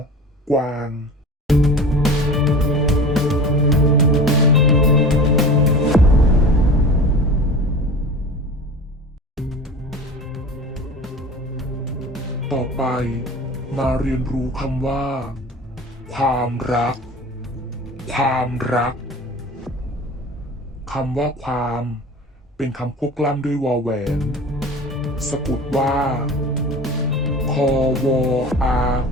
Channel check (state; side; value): normal; both; correlation 0.36